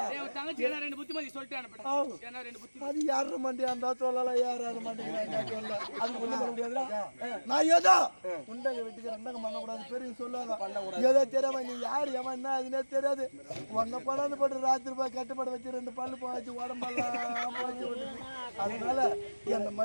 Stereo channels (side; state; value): both; inverted; correlation -1.00